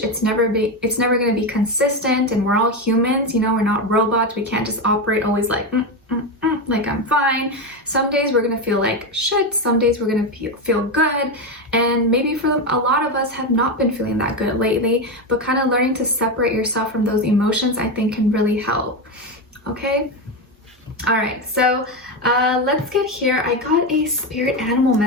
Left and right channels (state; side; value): normal; both; correlation 0.13